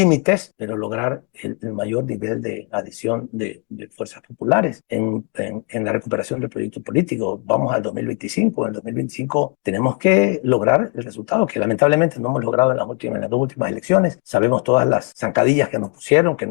pero lograr el mayor nivel de adhesión de fuerzas populares en la recuperación del proyecto político. Vamos al 2025. En el 2025 tenemos que lograr el resultado que lamentablemente no hemos logrado en las dos últimas elecciones. Sabemos todas las zancadillas que nos pusieron, que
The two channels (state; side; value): quieter; right; 32.8 dB